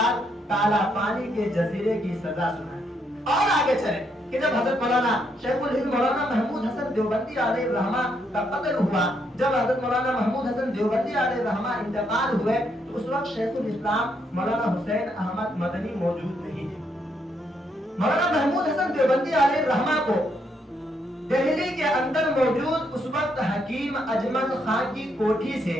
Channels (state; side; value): normal; both; correlation 0.75